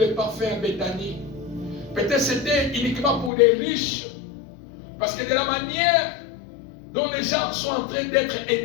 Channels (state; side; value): drops out; right; at 3.3 s